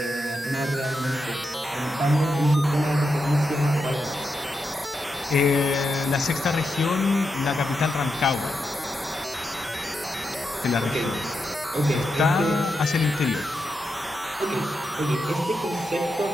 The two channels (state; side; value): normal; both; correlation 0.86